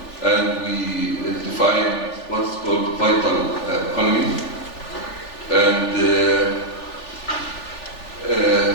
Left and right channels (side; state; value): right; late; 3.4 ms